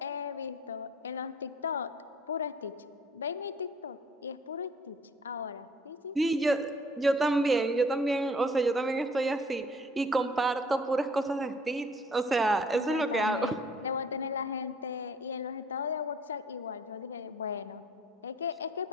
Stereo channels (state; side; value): normal; both; correlation 0.57